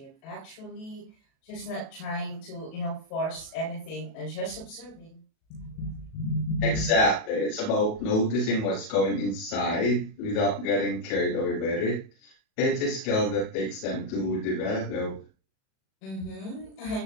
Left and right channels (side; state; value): right; late; 37 ms